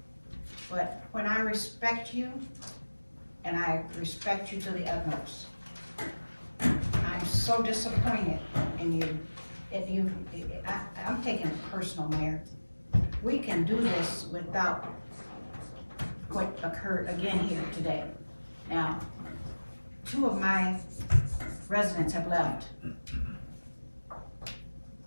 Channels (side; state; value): both; inverted; correlation -1.00